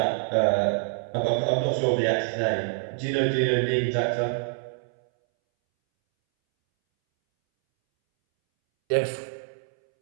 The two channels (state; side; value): silent; left; 61 dB below the other